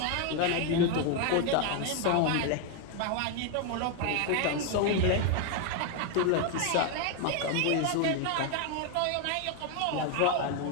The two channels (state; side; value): different; both; correlation 0.01